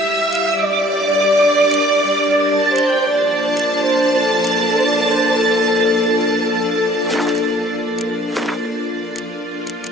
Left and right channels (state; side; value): normal; both; correlation 0.56